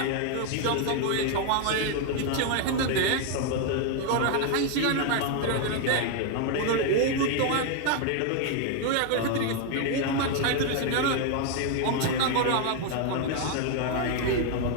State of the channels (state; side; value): different; both; correlation 0.01